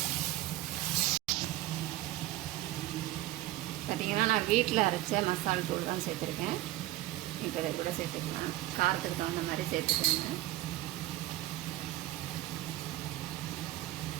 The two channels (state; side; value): quieter; left; 16.3 dB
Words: பார்த்திங்கன்னா நான் வீட்டில் அரைச்ச மசாலா தூள் தான் சேர்த்துருக்கேன். இப்போ இதை கூட சேர்த்துக்கலாம். காரத்துக்கு தகுந்த மாதிரி சேர்த்துக்கோங்க.